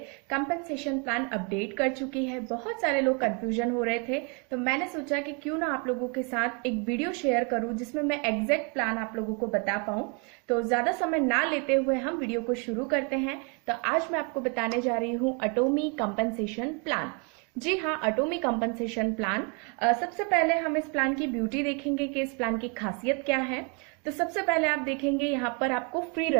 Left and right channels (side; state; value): left; quieter; 34.1 dB